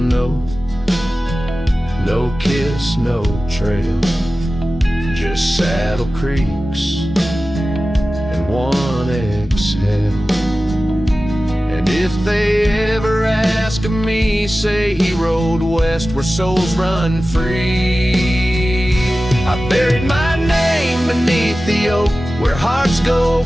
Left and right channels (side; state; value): both; normal; correlation 0.95